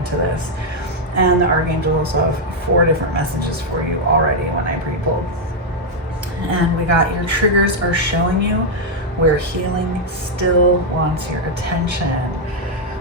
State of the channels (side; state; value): both; normal; correlation -0.01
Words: this. And the archangels have 4 different messages for you already when I pre-pulled. And we got your triggers are showing you where healing still wants your attention.